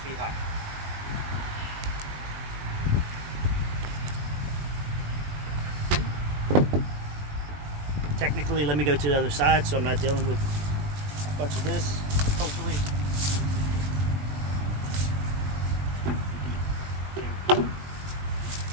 high. Technically, let me go to the other side so I'm not dealing with a bunch of this, hopefully.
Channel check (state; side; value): late; left; 20 ms